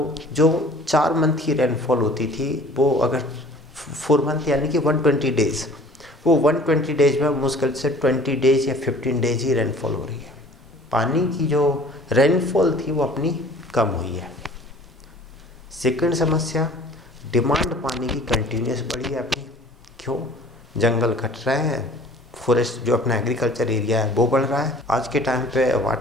जो 4 मंथ की रेनफॉल होती थी वो अगर 4 मंथ यानी कि 120 डेज़, वो 120 डेज में मुश्किल से 20 डेज या 15 डेज ही रेनफॉल हो रही है। पानी की जो रेनफॉल थी वो अपनी कम हुई है। सेकंड समस्या, डिमांड पानी की कंटिन्यूस बढ़ी है अपनी। क्यों? जंगल कट रहे हैं, फॉरेस्ट जो अपना एग्रीकल्चर एरिया है वो बढ़ रहा है। आज के टाइम पे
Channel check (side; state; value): both; normal; correlation 0.49